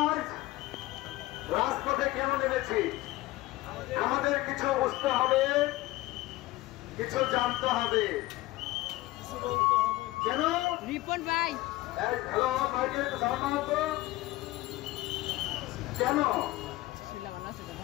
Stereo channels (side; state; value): right; quieter; 18.5 dB